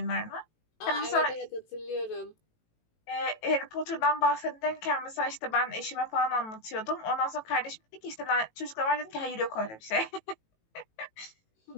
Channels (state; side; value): late; right; 18 ms